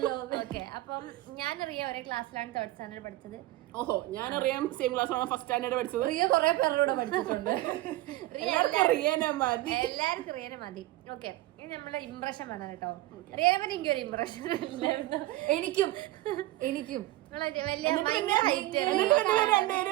ഓക്കെ, അപ്പം ഞാനറിയാം ഒരേ ക്ലാസ്സിലാണ് 3rd സ്റ്റാൻഡേർഡ് പഠിച്ചത്. ഓഹോ, ഞാനറിയാം സെയിം ക്ലാസ്സിലാണ് 1st സ്റ്റാൻഡേർഡ് പഠിച്ചത്. റിയ കുറെ പേരുടെ പഠിച്ചിട്ടുണ്ട്. എല്ലാവർക്കും റിയനെ മതി. ഓക്കെ, ഇനി നമ്മളെ ഇംപ്രഷൻ വേണം കേട്ടോ. റിയനെ പറ്റി എനിക്കൊരു ഇംപ്രഷൻ ഇല്ലായിരുന്നു. എനിക്കും വലിയ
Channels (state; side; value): quieter; left; 17.2 dB